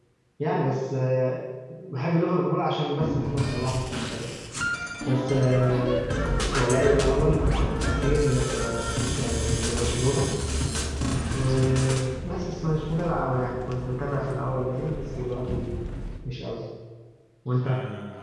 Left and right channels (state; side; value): identical; both; correlation 1.00